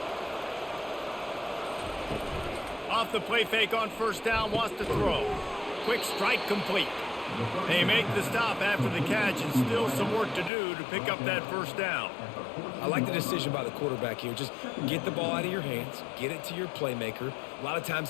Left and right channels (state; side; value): drops out; right; at 10.5 s